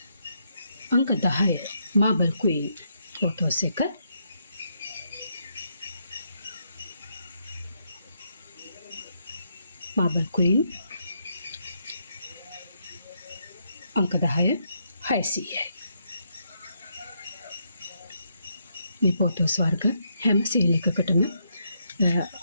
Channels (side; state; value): both; inverted; correlation -0.77